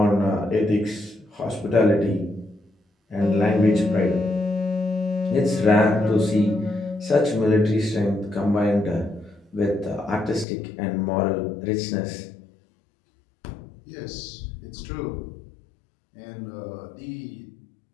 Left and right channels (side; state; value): right; drops out; at 10.5 s